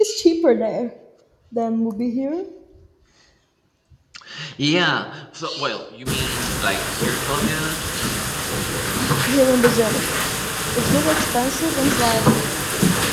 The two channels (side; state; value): both; identical; correlation 1.00